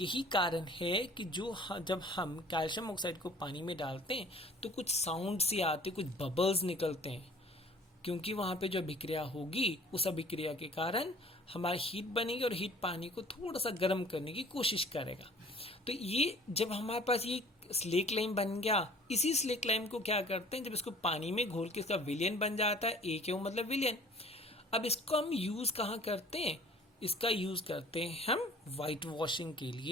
कारण है कि जब हम कैल्शियम ऑक्साइड को पानी में डालते हैं तो कुछ साउंड से आते, कुछ बबल्स निकलते हैं, क्योंकि वहां पे जो अभिक्रिया होगी उस अभिक्रिया के कारण हमारी हीट बनेगी और हीट पानी को थोड़ा सा गर्म करने की कोशिश करेगा। तो ये जब हमारे पास ये स्लेक लाइम बन गया, इसी स्लेक लाइम को क्या करते हैं, जब इसको पानी में घोल के इसका विलयन बन जाता है, ए क्यों मतलब विलयन। अब इसको हम यूज कहाँ करते हैं, इसका यूज करते हैं हम व्हाइट वॉशिंग के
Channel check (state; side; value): normal; both; correlation 0.49